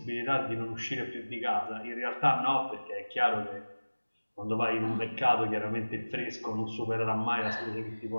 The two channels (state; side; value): inverted; both; correlation -1.00